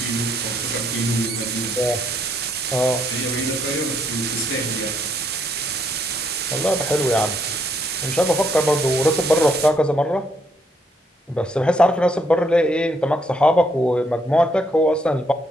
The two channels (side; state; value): both; normal; correlation 0.72